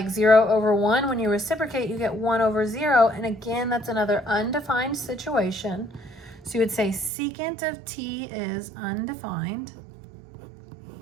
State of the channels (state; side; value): drops out; left; at 7.1 s